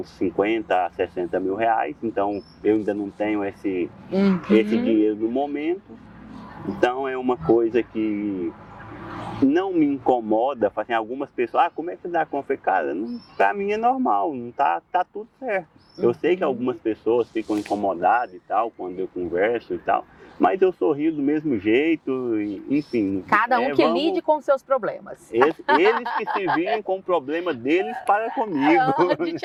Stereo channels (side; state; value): both; identical; correlation 1.00